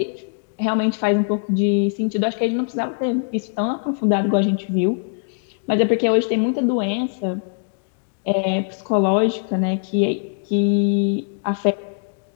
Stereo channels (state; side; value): silent; right; digital silence